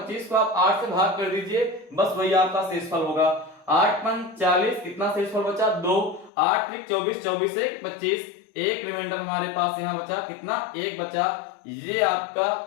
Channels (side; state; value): right; drops out; at 6.3 s